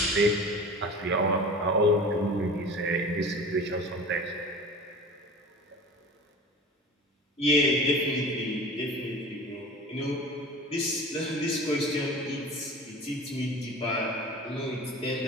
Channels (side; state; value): both; normal; correlation 0.37